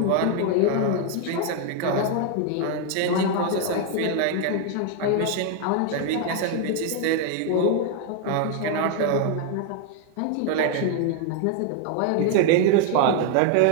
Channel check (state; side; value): different; both; correlation 0.00